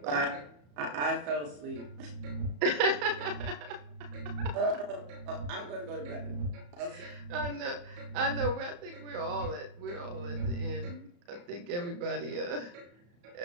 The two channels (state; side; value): late; left; 34 ms